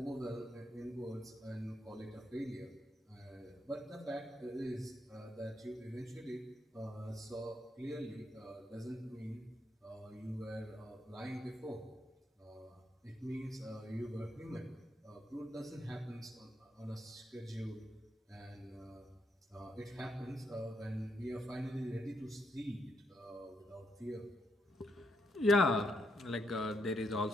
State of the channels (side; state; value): both; normal; correlation 0.78